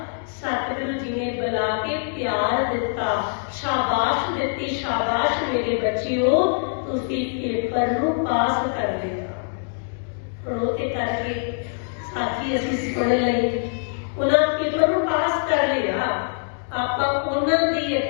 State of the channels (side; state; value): right; silent; digital silence